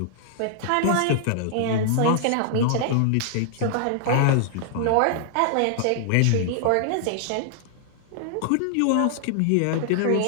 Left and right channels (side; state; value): both; different; correlation -0.01